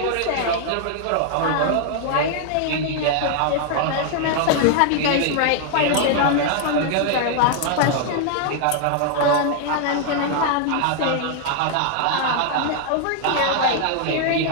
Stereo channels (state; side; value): different; both; correlation 0.00